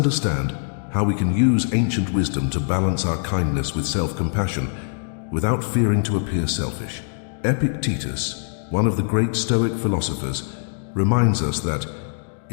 how we can use ancient wisdom to balance our kindness with self-compassion without fearing to appear selfish. Epictetus, one of the great Stoic philosophers, reminds us that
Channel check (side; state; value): right; silent; digital silence